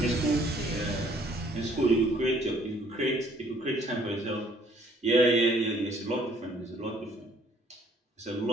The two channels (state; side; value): normal; both; correlation 0.61